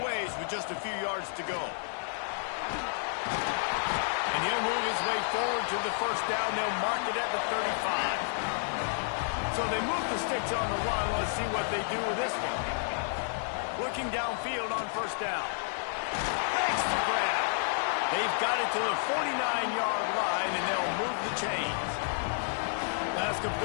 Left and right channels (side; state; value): right; silent; digital silence